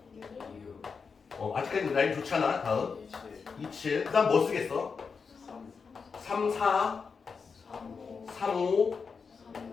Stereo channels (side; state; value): right; quieter; 5.4 dB